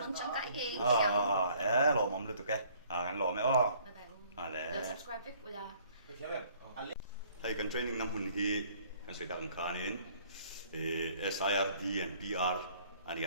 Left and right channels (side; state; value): both; inverted; correlation -0.58